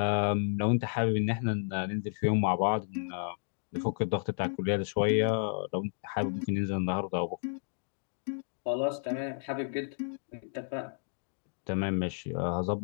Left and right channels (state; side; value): silent; right; digital silence